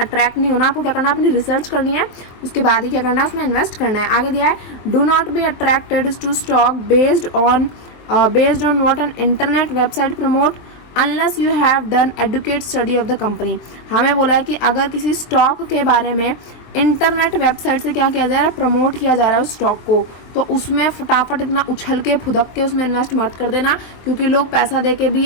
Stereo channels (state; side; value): late; right; 23 ms